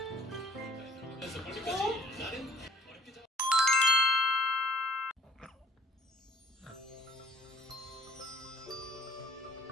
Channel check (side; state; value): both; normal; correlation 0.56